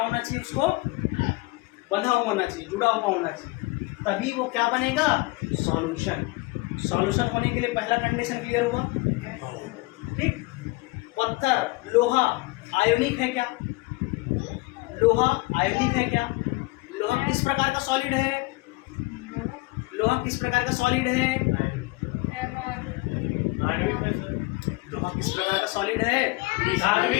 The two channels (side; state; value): right; quieter; 23.0 dB